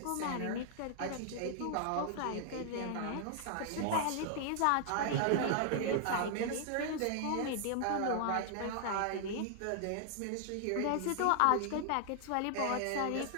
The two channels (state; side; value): different; both; correlation 0.00